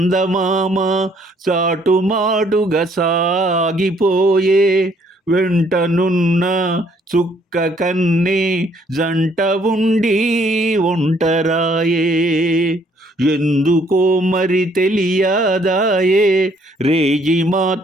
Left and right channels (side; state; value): both; normal; correlation 0.65